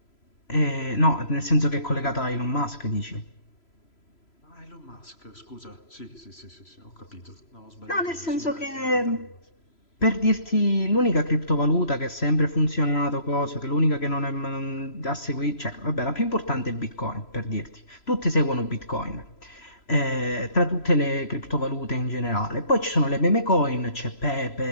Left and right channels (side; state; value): right; late; 3.0 ms